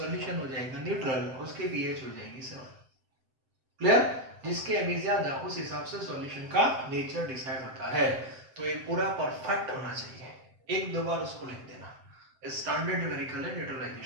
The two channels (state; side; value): late; left; 7.7 ms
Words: हो जाएगा न्यूट्रल, उसके पीएच हो जाएगी 7। क्लियर? जिसके एम ज्यादा उस हिसाब से सॉल्यूशन का नेचर डिसाइड होता है। तो ये पूरा परफेक्ट होना चाहिए। एक दो बार उसको लिख देना, स्टैंडर्ड न्यूमेरिकल है